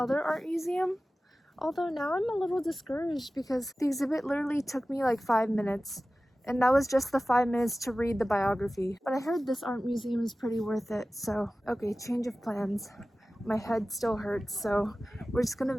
art museum. Although now I'm a little discouraged because the exhibit literally took me like 5 minutes. And that was just the 5 minutes to read the biography. But I heard this art museum is pretty worth it, so okay, change of plans. My head still hurts, so we're just gonna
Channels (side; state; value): both; normal; correlation 0.96